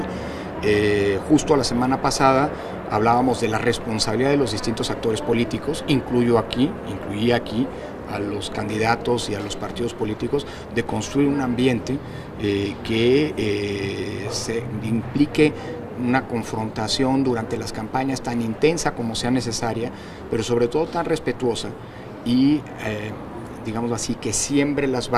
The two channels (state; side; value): identical; both; correlation 1.00